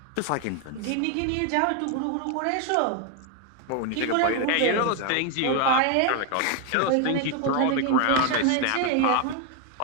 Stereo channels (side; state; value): both; different; correlation 0.01